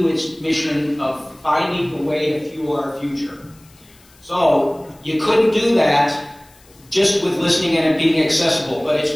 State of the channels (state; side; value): noise; left; hiss, 28 dB below the sound